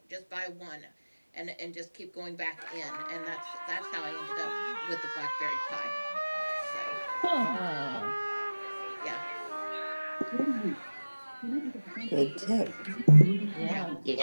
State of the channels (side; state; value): both; inverted; correlation -1.00